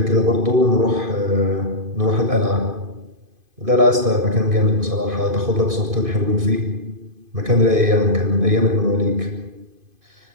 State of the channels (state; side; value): late; left; 2.5 ms